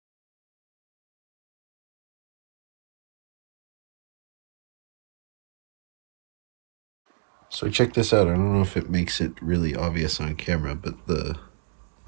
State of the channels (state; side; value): silent; left; digital silence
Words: So check this out. I don't know if it makes it really obvious on camera, but the